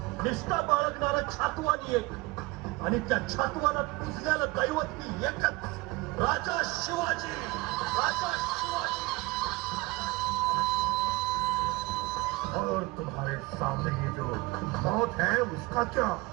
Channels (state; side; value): quieter; left; 22.4 dB